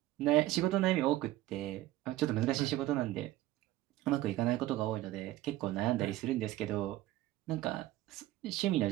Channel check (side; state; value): left; quieter; 15.8 dB